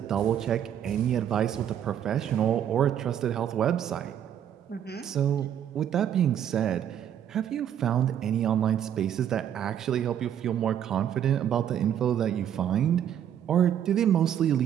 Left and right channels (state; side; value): quieter; left; 9.8 dB